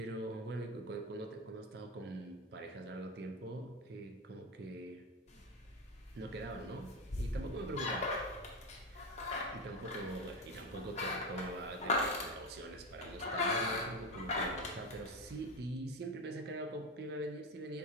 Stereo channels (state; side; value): normal; both; correlation 0.16